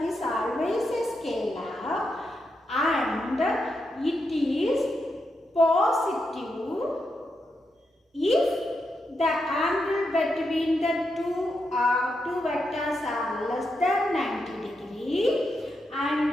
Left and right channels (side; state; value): both; normal; correlation 0.84